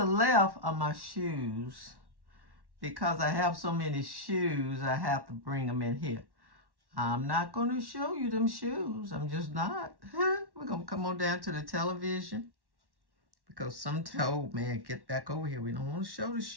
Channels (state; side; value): late; left; 1.1 ms